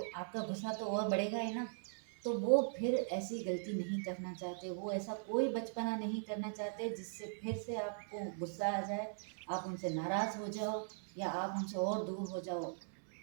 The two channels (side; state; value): left; silent; digital silence